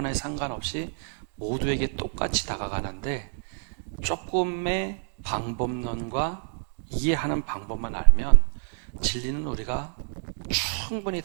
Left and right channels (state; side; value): silent; left; 60 dB below the other